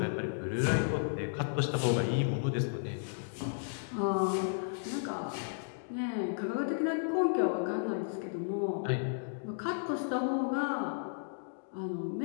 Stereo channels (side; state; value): right; silent; digital silence